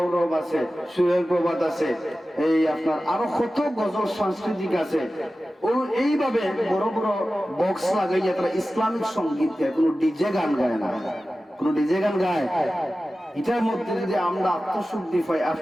আছে, সুরের প্রবাদ আছে, এই আপনার আরো কত গজল সাংস্কৃতিক আছে। ও এইভাবে বড় বড় বক্স লাগাইয়া তারা ইসলামিক সঙ্গীত গায়, কোনো ডিজে গান গায় না। কোনো ডিজে গান গায়? এটার মধ্যে যদি আমরা আত্মশুদ্ধি পাই,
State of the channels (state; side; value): normal; both; correlation 0.95